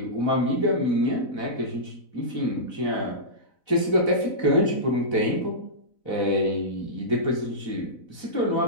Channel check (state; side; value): late; right; 4.0 ms